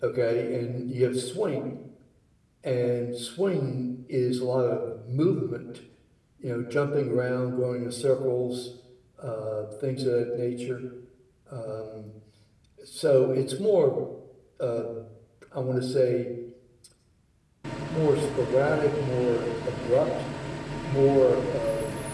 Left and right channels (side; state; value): both; identical; correlation 1.00